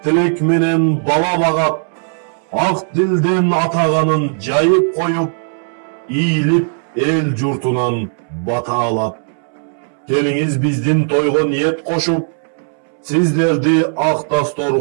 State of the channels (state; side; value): silent; left; 68 dB below the other